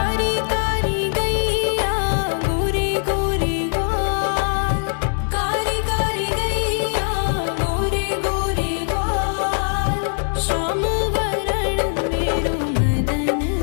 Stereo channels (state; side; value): silent; right; 60 dB below the other